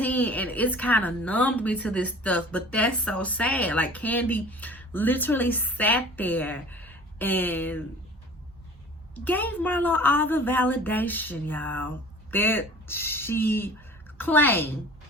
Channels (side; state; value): both; normal; correlation 0.45